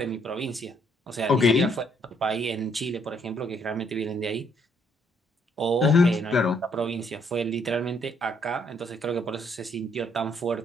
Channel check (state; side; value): normal; both; correlation 0.69